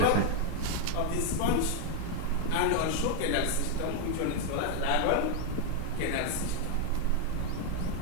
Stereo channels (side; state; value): both; different; correlation 0.01